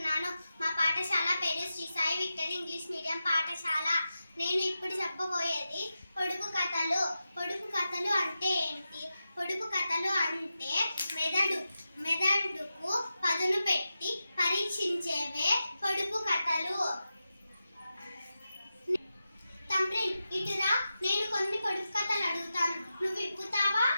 మా పాఠశాల పేరు Shri Sai victory English medium పాఠశాల. నేను ఇప్పుడు చెప్పబోయేది పొడుపు కథలు. పొడుపు కథలు అంటే ఏంటి? పొడుపు కథలు అంటే మెదడుకు పదును పెట్టి పరీక్షించేవే పొడుపు కథలు. తండ్రిన్ ఇటురా, నేను కొన్ని పొడుపు కథలు అడుగుతాను, నువ్వు విప్పుతావా?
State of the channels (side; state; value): both; inverted; correlation -0.91